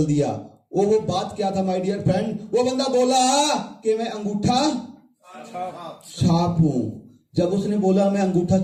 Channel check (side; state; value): both; identical; correlation 1.00